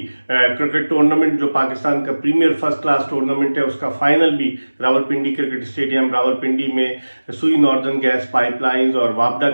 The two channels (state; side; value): inverted; both; correlation -1.00